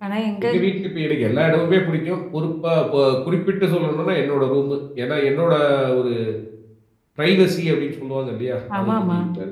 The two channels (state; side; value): identical; both; correlation 1.00